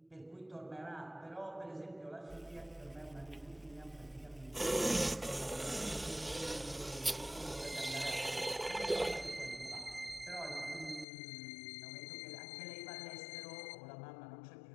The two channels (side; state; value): right; drops out; at 11.1 s